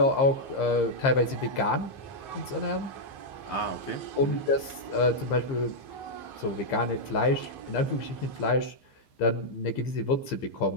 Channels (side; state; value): right; late; 15 ms